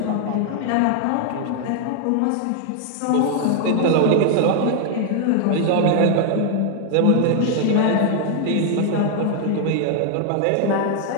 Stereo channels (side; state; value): both; different; correlation 0.00